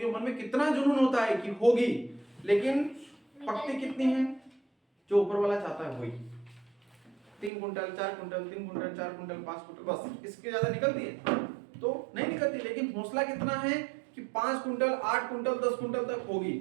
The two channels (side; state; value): left; drops out; at 7.5 s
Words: मन में कितना जुनून होता है कि होगी, लेकिन पकती कितनी है, जो ऊपर वाला चाहता है वही 3 quintal 4 quintal 3 quintal 4 quintal 5 quintal, बस इसके ज्यादा निकलती है तो नहीं निकलती। लेकिन हौसला कितना है कि 5 कुंटल 8 कुंटल 10 कुंटल तक होगी।